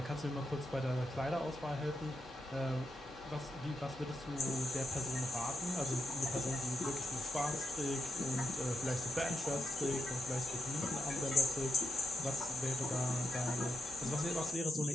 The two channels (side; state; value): both; normal; correlation 0.85